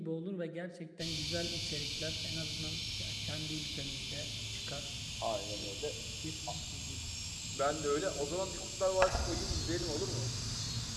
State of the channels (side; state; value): both; identical; correlation 1.00